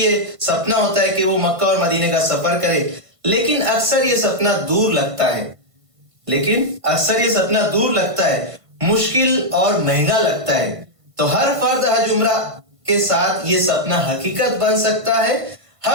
है, सपना होता है कि वो मक्का और मदीने का सफर करे, लेकिन अक्सर ये सपना दूर लगता है, मुश्किल और महंगा लगता है। तो हर फर्द हज उम्रा के साथ ये सपना हकीकत बन सकता है।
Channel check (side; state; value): left; late; 1.5 ms